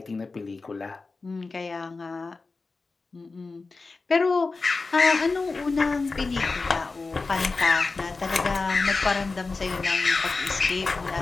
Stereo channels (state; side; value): quieter; right; 3.9 dB